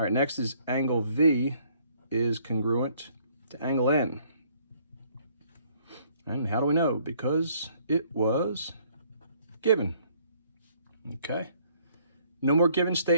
right, next is angle V is congruent to angle N. And how do we know? Because it was given. Okay. No more given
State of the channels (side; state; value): both; inverted; correlation -0.63